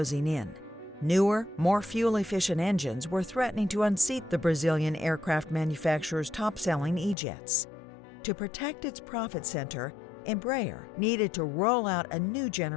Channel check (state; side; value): drops out; right; at 7.2 s